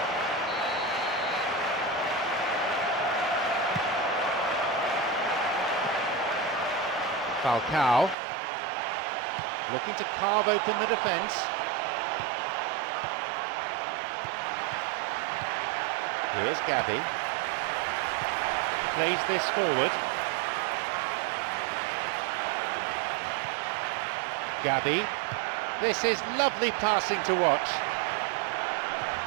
Falcao looking to carve open the defence. Here's Gabby. Plays this forward. Gabby. This is lovely passing to watch.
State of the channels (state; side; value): drops out; left; at 8.2 s